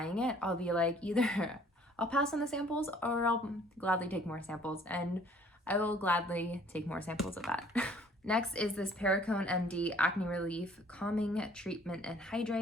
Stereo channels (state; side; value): normal; both; correlation 0.57